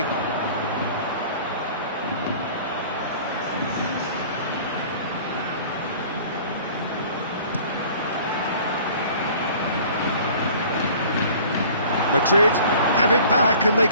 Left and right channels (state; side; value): inverted; both; correlation -0.48